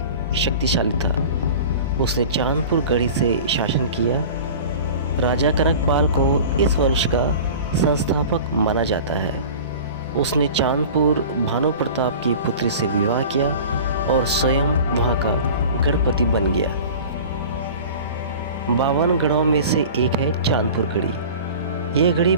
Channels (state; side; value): inverted; both; correlation -0.38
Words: शक्तिशाली था। उसने चांदपुर गढ़ी से शासन किया। राजा कनकपाल को इस वंश का संस्थापक माना जाता है। उसने चांदपुर भानु प्रताप की पुत्री से विवाह किया और स्वयं वहां का गढ़पति बन गया। 52 गढ़ों में से एक है चांदपुर गढ़ी। यह गढ़ी